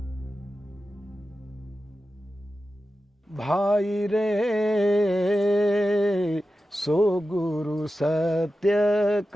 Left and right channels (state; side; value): normal; both; correlation 0.93